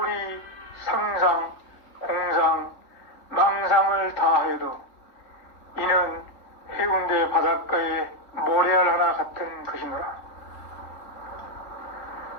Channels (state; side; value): late; right; 3.4 ms